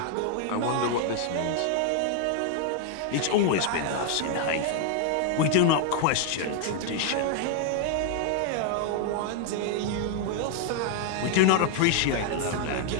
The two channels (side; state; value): both; different; correlation 0.00